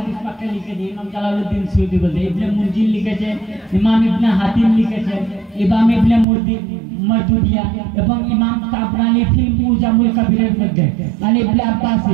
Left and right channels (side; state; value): left; drops out; at 6.2 s